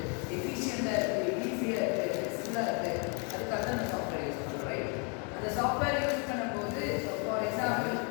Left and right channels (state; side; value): quieter; right; 36.3 dB